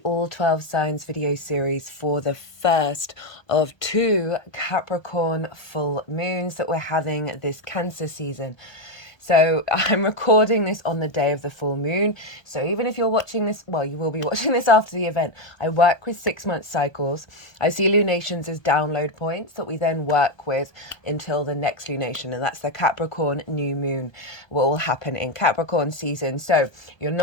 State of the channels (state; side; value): late; right; 1.3 ms